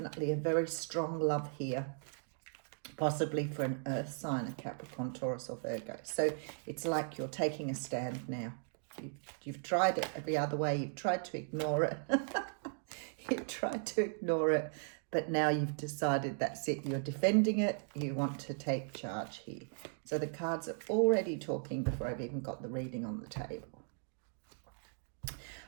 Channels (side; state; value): left; silent; digital silence